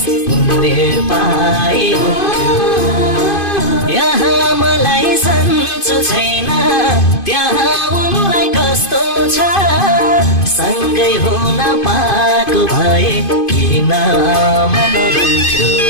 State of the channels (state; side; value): late; right; 2.5 ms